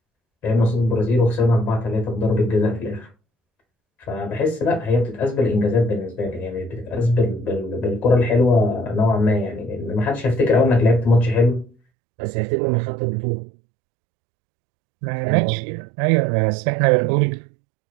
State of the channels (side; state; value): left; drops out; at 11.8 s